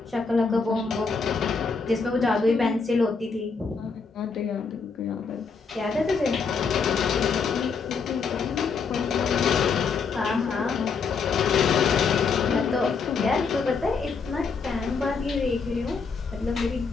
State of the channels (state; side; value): quieter; right; 5.1 dB